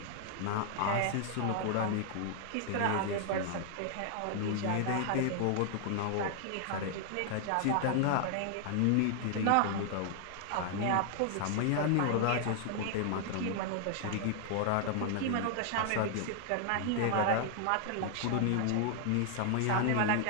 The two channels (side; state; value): both; different; correlation -0.01